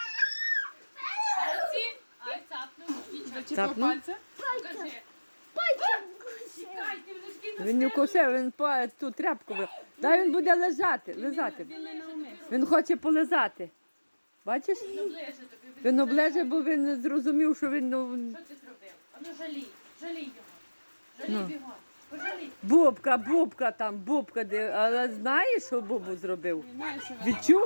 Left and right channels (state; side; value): inverted; both; correlation -1.00